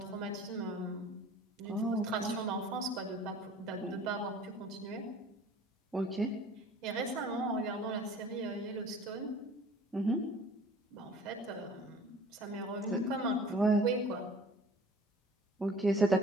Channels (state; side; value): normal; both; correlation 0.48